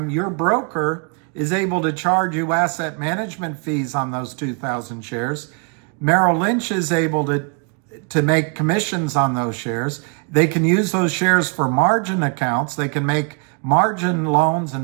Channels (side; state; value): left; quieter; 34.2 dB